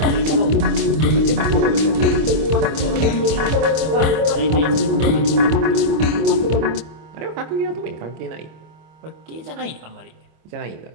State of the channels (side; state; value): left; late; 25 ms